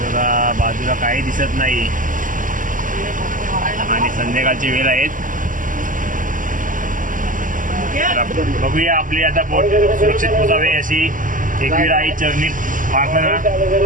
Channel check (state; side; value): late; left; 0.38 ms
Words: बघा बाजूला काही दिसत नाही आणि संध्याकाळची वेळ आहेत. बघूया आपली आता बोट सुरक्षित पोहोचावे अशी एकविराई चरणी प्रार्थना.